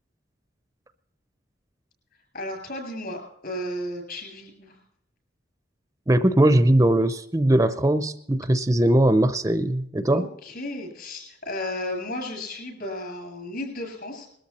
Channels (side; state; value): both; normal; correlation 0.83